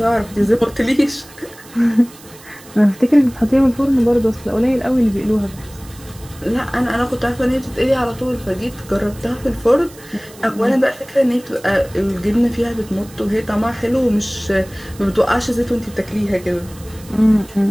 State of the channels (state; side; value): noise; right; hiss, 22 dB below the sound